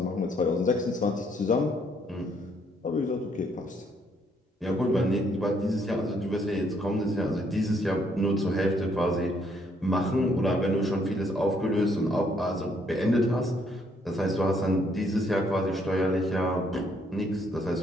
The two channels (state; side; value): normal; both; correlation 0.69